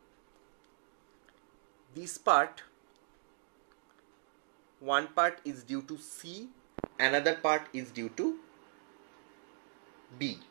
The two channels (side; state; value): left; silent; digital silence